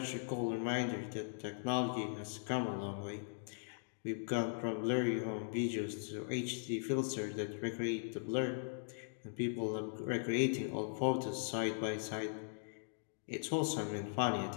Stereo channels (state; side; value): silent; right; digital silence